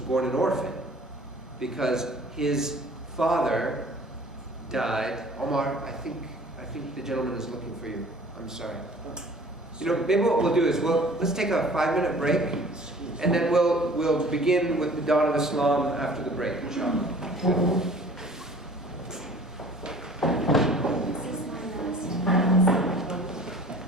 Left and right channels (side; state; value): both; normal; correlation 0.48